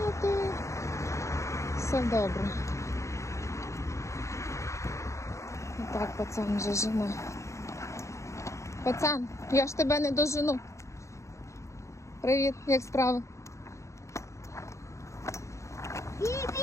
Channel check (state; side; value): late; right; 0.14 ms